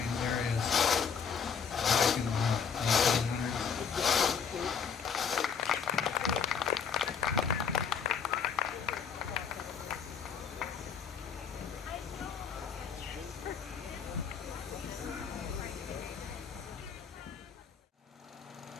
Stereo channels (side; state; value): right; quieter; 6.6 dB